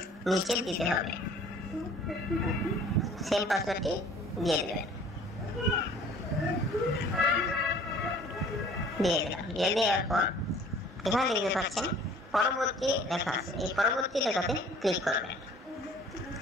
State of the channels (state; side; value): normal; both; correlation 0.51